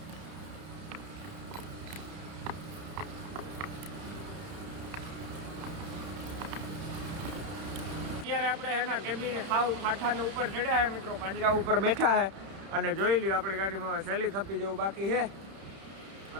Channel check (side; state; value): left; late; 31 ms